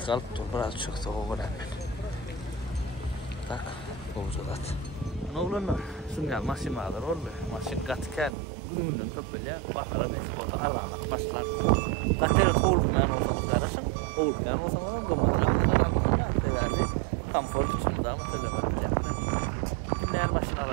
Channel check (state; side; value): drops out; left; at 8.3 s